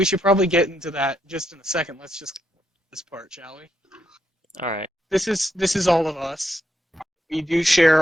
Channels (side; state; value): both; normal; correlation 0.79